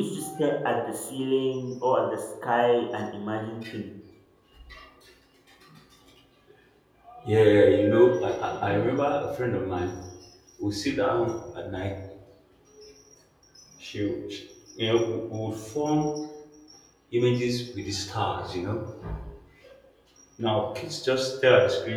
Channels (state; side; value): identical; both; correlation 1.00